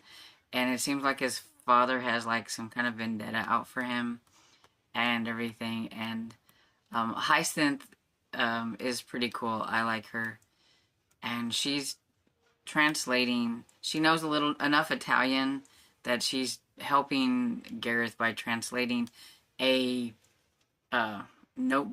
and it seems like his father has like some kind of vendetta out for him and everything. And Hyacinth is pretty cool. I like her, and she's translating. She knows enough Italian that she's helping Gareth by translating a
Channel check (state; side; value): identical; both; correlation 1.00